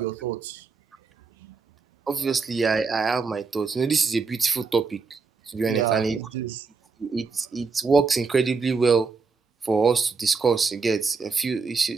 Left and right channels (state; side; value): quieter; left; 4.7 dB